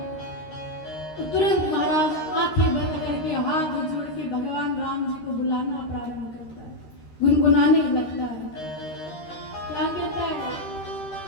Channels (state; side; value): late; right; 13 ms